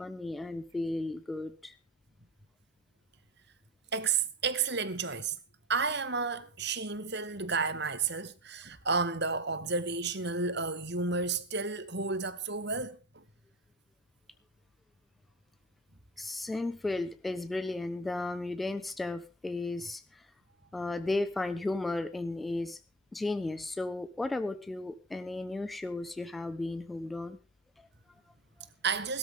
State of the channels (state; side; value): normal; both; correlation 0.30